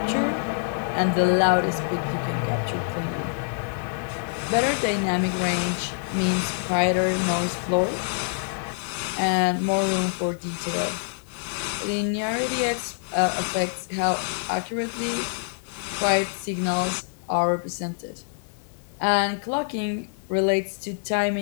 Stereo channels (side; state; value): right; silent; digital silence